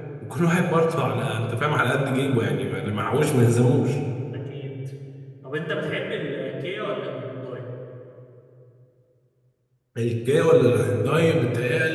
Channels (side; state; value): both; identical; correlation 1.00